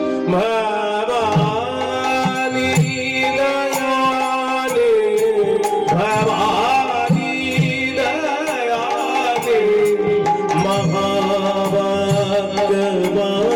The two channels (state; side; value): identical; both; correlation 1.00